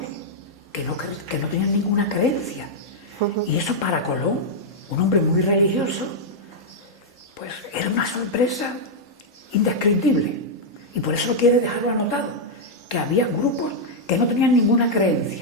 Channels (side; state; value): both; normal; correlation -0.04